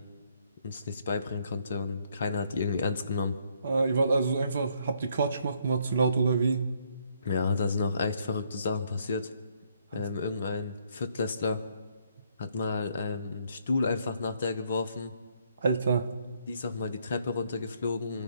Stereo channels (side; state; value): both; inverted; correlation -0.69